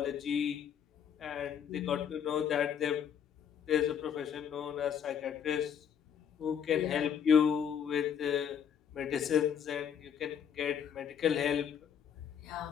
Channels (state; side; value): quieter; right; 8.1 dB